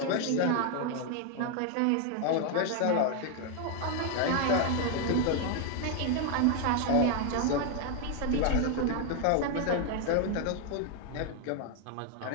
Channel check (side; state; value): both; different; correlation 0.01